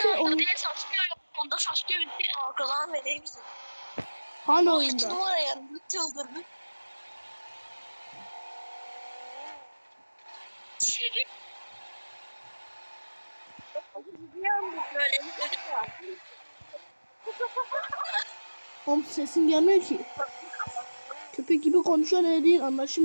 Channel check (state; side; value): inverted; both; correlation -1.00